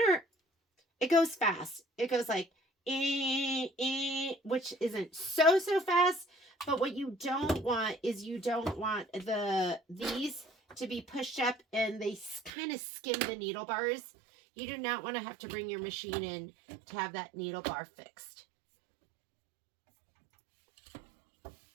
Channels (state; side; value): drops out; left; at 12.5 s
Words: it goes fast. It goes like, which isn't so fast, but what you don't want is you don't want these to be pushed up and they kind of skim the needle bars. You do not want to have to bring your machine in to have that needle bar fixed.